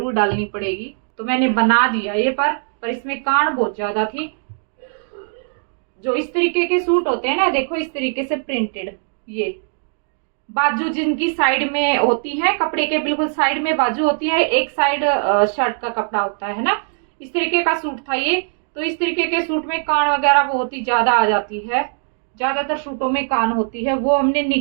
डालनी पड़ेगी। तो मैंने बना दिया ये, पर इसमें कान बहुत ज्यादा थी। जो इस तरीके के सूट होते हैं ना, देखो इस तरीके से प्रिंटेड, ये बाजू जिनकी साइड में होती है, कपड़े के बिल्कुल साइड में बाजू होती है, एक साइड शर्ट का कपड़ा होता है ना, इस तरीके का सूट था ये। तो इस तरीके के सूट में कान वगैरह बहुत ही ज्यादा आ जाती है, ज्यादातर सूटों में कान होती है, वो हमने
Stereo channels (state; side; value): silent; left; digital silence